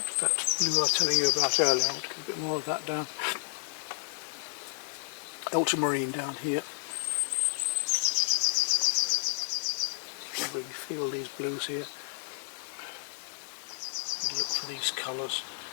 That blue I was telling you about earlier, I want to get a bit more of that down. ultramarine down here. I really feel these blues here. And look for these colours.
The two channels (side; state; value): right; silent; digital silence